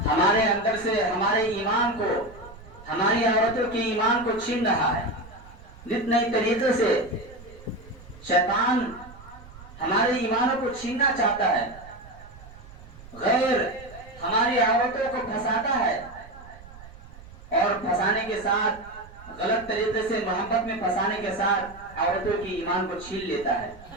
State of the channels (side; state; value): right; noise; rumble, 19 dB below the sound